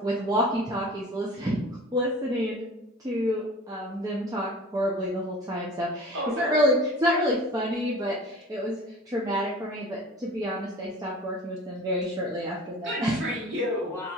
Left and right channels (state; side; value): normal; both; correlation 0.41